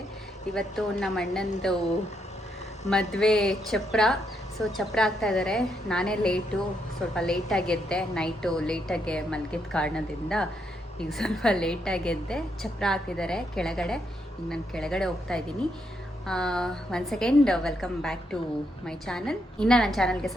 ಇವತ್ತು ನಮ್ಮ ಅಣ್ಣಂದು ಮದುವೆ ಚಪ್ರ. ಸೊ ಚಪ್ರ ಆಗ್ತಾ ಇದ್ದಾರೆ. ನಾನೇ ಸ್ವಲ್ಪ ಲೇಟಾಗಿ ಎದ್ದೆ. ನೈಟು ಲೇಟಾಗಿ ಮಲಗಿದ ಕಾರಣದಿಂದ ಈಗ ಸ್ವಲ್ಪ ಲೇಟಾಗಿ ಎದ್ದೆ. ಚಪ್ರ ಹಾಕಿದ್ದಾರೆ ಕೆಳಗಡೆ. ಈಗ ನಾನು ಕೆಳಗಡೆ ಹೋಗ್ತಾ ಇದ್ದೀನಿ. One second, welcome back to my channel. ಇನ್ನು ನನ್ನ ಚಾನಲ್ಗೆ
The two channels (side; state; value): both; normal; correlation 0.78